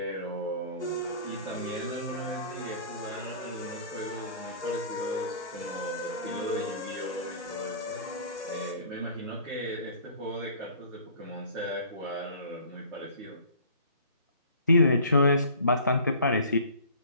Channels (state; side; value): inverted; both; correlation -0.47